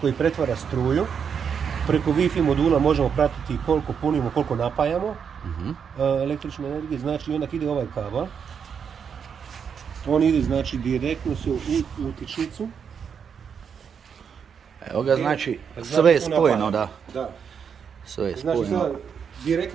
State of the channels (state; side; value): quieter; left; 7.0 dB